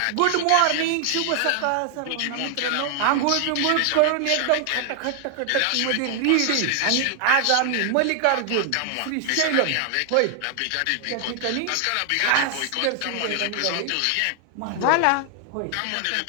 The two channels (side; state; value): both; different; correlation 0.00